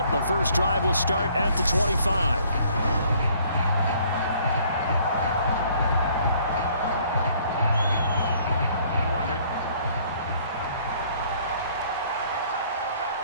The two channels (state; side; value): inverted; both; correlation -0.60